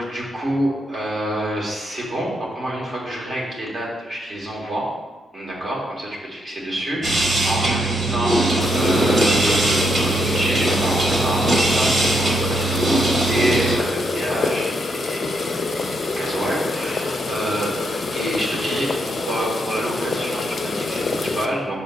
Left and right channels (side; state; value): both; normal; correlation 0.78